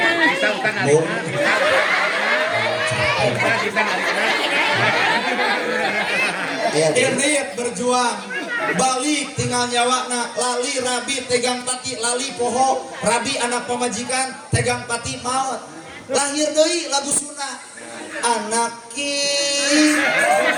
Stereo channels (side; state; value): both; identical; correlation 1.00